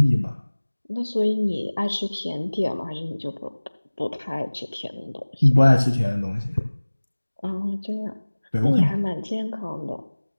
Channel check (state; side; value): inverted; both; correlation -1.00